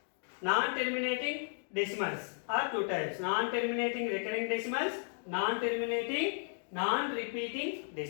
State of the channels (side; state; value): right; silent; 55 dB below the other